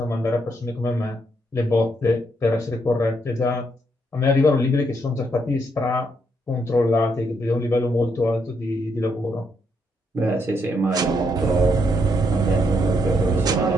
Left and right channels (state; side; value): normal; both; correlation 0.76